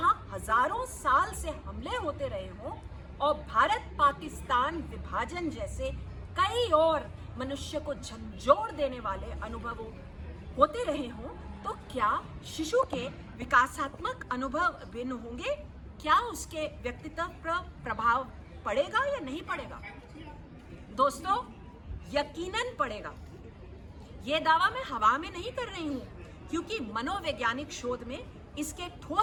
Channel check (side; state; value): both; identical; correlation 1.00